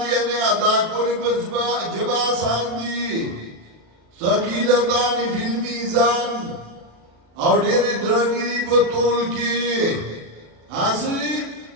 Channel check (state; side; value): late; left; 36 ms